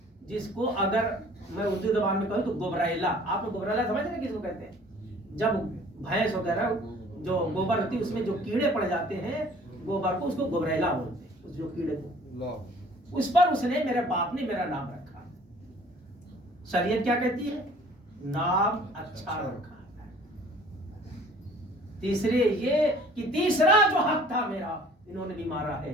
جس کو اگر میں اردو زبان میں کہوں تو گبریلا. آپ نے گبریلا سمجھ رہے ہیں کس کو کہتے ہیں؟ جب بھینس وغیرہ جو گوبر ہوتی ہے اس میں جو کیڑے پڑ جاتے ہیں گوبر کو، اس کو گبریلا بولتے ہیں. اس جو کیڑے کو، اس پر اس نے، میرے باپ نے میرا نام رکھا. شریعت کیا کہتی ہے؟ نام اچھا رکھا. تیسرے یہ کہ تیسرا جو حق تھا میرا انہوں نے بھی مارا ہے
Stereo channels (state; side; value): normal; both; correlation 0.52